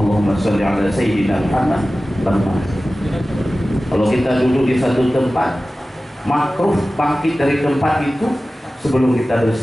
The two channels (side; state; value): both; normal; correlation 0.96